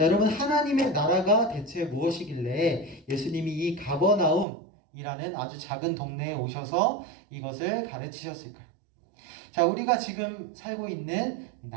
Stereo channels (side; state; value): left; drops out; at 4.5 s